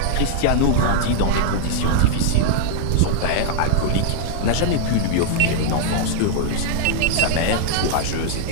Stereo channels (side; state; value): both; different; correlation -0.01